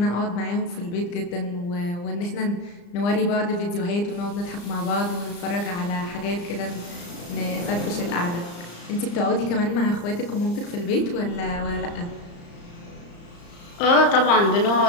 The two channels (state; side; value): late; right; 35 ms